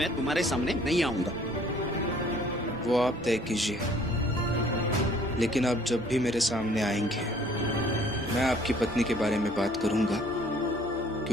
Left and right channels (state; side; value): normal; both; correlation 0.57